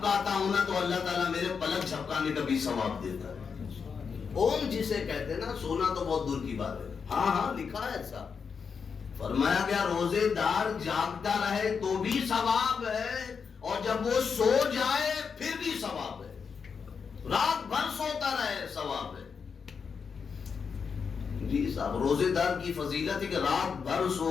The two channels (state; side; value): quieter; right; 6.0 dB